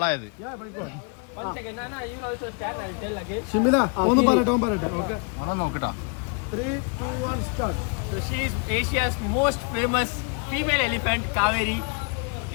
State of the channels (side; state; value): right; quieter; 36.2 dB